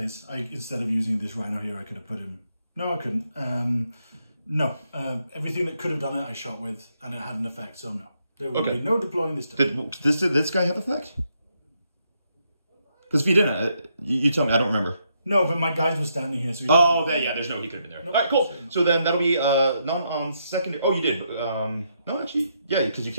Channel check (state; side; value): inverted; both; correlation -0.78